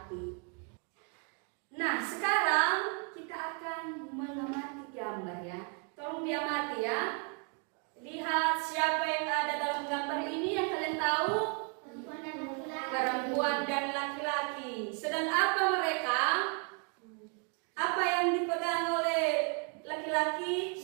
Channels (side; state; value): left; quieter; 36.7 dB